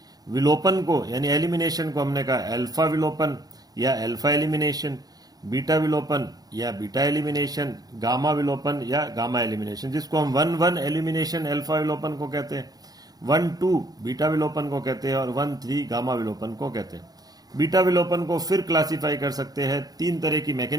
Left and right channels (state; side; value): late; left; 0.19 ms